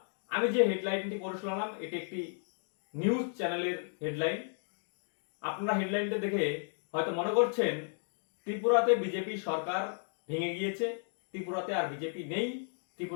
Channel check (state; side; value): silent; right; 55 dB below the other